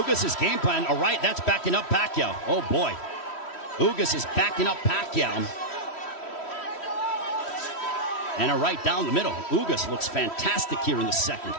game plan, all right, that's backing up Pacquiao. Oh, boy. Ugas is backing up Pacquiao. And a right down the middle. Ugas looks fantastic here in the second.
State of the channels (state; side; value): late; right; 3.1 ms